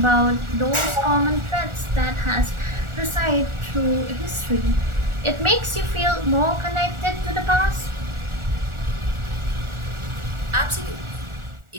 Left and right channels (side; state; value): left; late; 1.4 ms